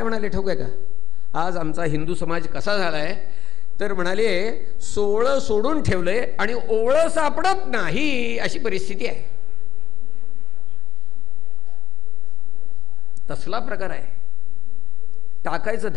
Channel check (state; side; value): quieter; right; 4.7 dB